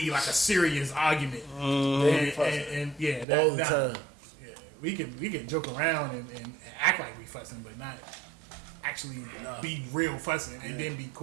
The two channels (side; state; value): left; drops out; at 3.2 s